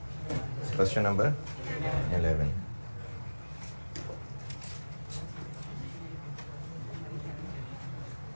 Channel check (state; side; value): inverted; both; correlation -1.00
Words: क्वेश्चन नंबर 11।